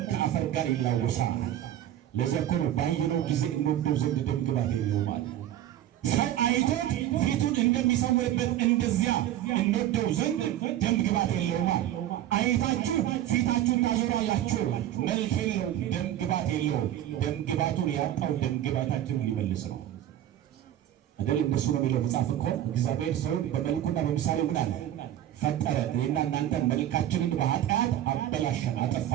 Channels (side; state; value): left; quieter; 12.1 dB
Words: ከአፈር ጋር ይላወሳል። ለዚያ እኮ ነው ባየነው ጊዜ እንወደው ዘንድ ደም ግባት የለውም ማለት። ሰው አይቶት ፊቱን እንደሚሰውርበት እንደዚያ እንወደው ዘንድ ደም ግባት የለውም ማለት። አይታችሁ ፊታችሁን ታዞራላችሁ። መልክ የለው፣ ደም ግባት የለው። ደም ግባቱን ያጣው ደም ግባታችንን ሊመልስ ነው አይደል? እንደሱ ነው የሚለው መጽሐፍ እኮ። እግዚአብሔር ሰውን በመልኩና በምሳሌው ምን አለ? ፈጠረ። እኔና እናንተ መልካችንን በኃጢአት አበላሸን፣ አጠፋ